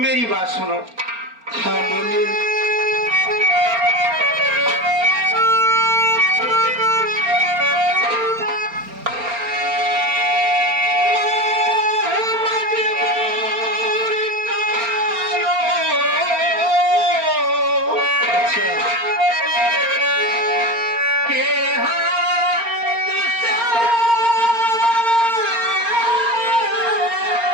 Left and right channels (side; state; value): left; late; 4.3 ms